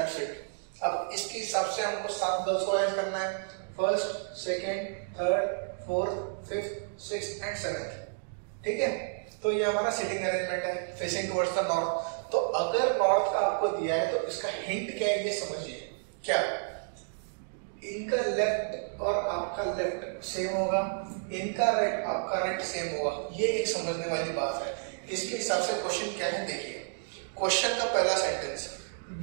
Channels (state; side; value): silent; left; digital silence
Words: इट। अब इसके हिसाब से हमको 7 गर्ल्स को अरेंज करना है, first, second, third, fourth, fifth, sixth and seventh. ठीक है, तो ये हमारा सिटिंग अरेंजमेंट है फेसिंग टुवर्ड्स द नॉर्थ। तो अगर नॉर्थ का आपको दिया है तो इसका हिंट क्या है ये समझिए। क्या इनका लेफ्ट और आपका लेफ्ट सेम होगा, इनका राइट आपका राइट सेम होगा, ये एक समझने वाली बात है। इसके हिसाब से क्वेश्चन क्या है देखिए। क्वेश्चन का पहला sentence,